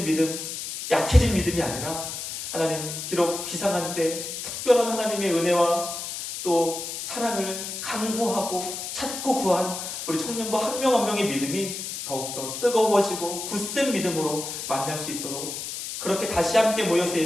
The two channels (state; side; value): noise; left; hiss, 6 dB below the sound